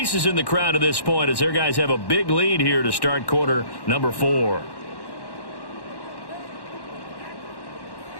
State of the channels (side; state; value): right; late; 1.1 ms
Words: in the crowd at this point as their guys have a big lead here to start quarter number 4.